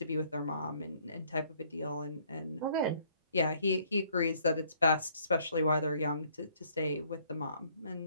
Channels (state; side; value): inverted; both; correlation -0.63